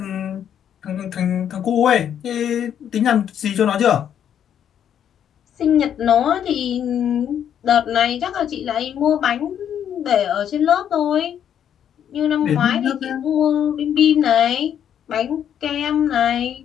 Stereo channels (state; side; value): quieter; right; 9.3 dB